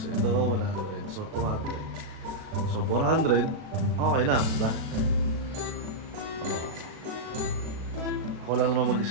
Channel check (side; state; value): left; late; 37 ms